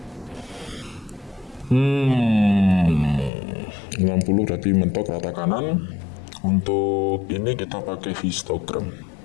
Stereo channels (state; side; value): drops out; right; at 3.3 s